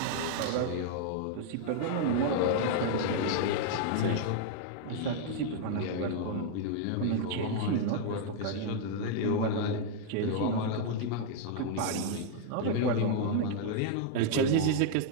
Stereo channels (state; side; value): different; both; correlation -0.01